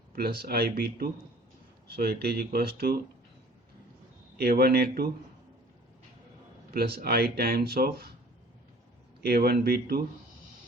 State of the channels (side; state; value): both; normal; correlation 0.50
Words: plus IB2, so it is equals to A1A2 plus I times of A1B2